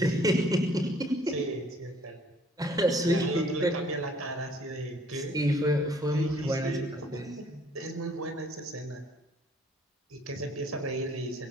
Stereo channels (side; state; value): both; normal; correlation 0.60